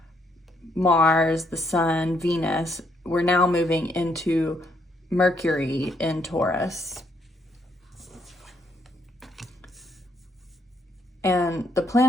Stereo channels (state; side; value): normal; both; correlation 0.73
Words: Mars, the Sun, Venus, we're now moving into Mercury in Taurus. And the